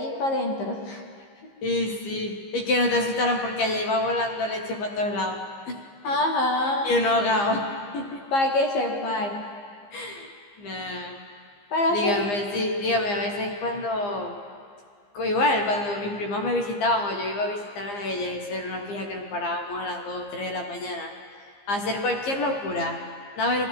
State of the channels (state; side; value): late; right; 15 ms